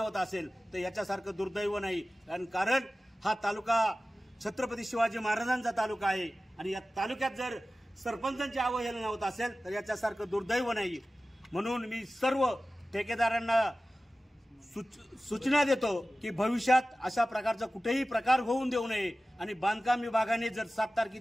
होत असेल तर याच्यासारखं दुर्दैव नाही. कारण हा तालुका छत्रपती शिवाजी महाराजांचा तालुका आहे आणि या तालुक्यात जर सरपंचांची अवहेलना होत असेल तर याच्यासारखं दुर्दैव नाही. म्हणून मी सर्व ठेकेदारांना सूचना देतो की भविष्यात अशा प्रकारचा कुठेही प्रकार होऊन देऊ नये आणि बांधकाम विभागाने जर 7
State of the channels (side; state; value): both; normal; correlation 0.96